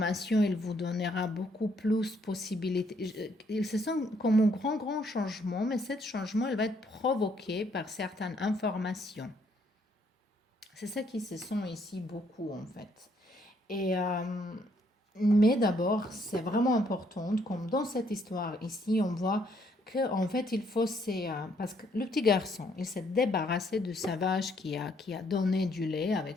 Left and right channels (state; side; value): normal; both; correlation 0.69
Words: il vous donnera beaucoup plus de possibilités. Il se sent comme un grand, grand changement, mais ce changement, il va être provoqué par certaines informations. C'est ça qui se sent ici beaucoup, en fait. Et, mais d'abord, c'est vraiment important, comme dans cette histoire ici, on voit que en fait il faut parce que le petit garçon il s'est débarrassé de sa vache qui a donné du lait